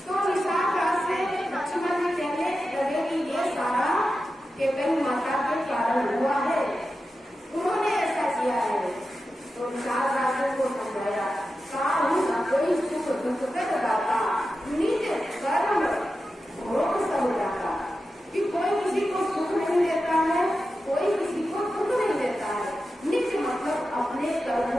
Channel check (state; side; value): normal; both; correlation 0.91